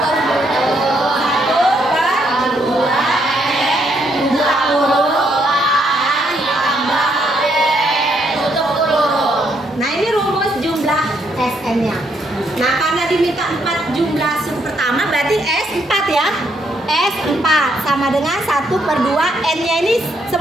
Nah ini rumus jumlah SN-nya. Nah karena diminta 4 jumlah suku pertama berarti S4 ya. S4 sama dengan 1/2 N-nya ini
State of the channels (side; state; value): both; normal; correlation 0.74